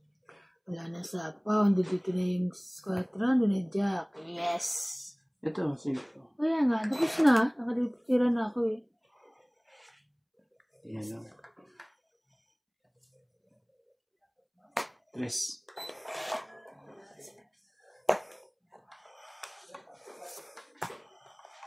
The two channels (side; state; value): both; identical; correlation 1.00